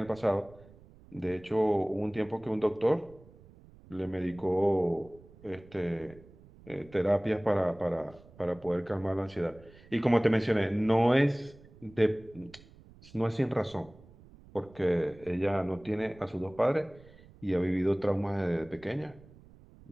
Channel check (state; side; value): noise; right; rumble, 23 dB below the sound